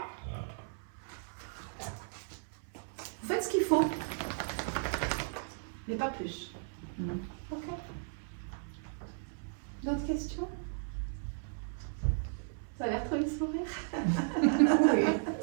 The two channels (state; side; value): silent; left; 54 dB below the other